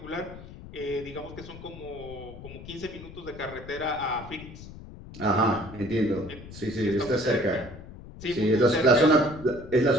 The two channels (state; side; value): noise; left; rumble, 15 dB below the sound